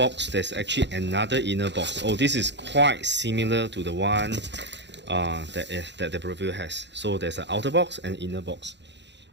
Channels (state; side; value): late; left; 0.52 ms